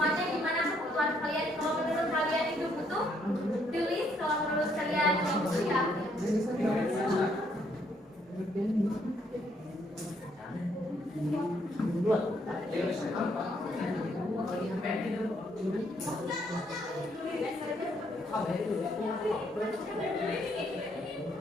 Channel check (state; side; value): normal; both; correlation 0.71